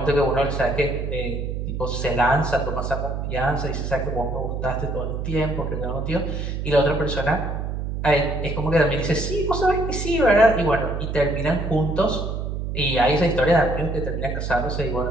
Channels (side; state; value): right; noise; hum, 3 dB below the sound